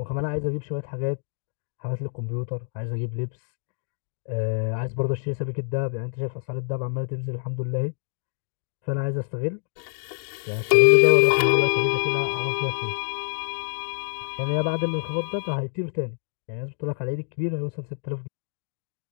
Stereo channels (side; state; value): right; silent; digital silence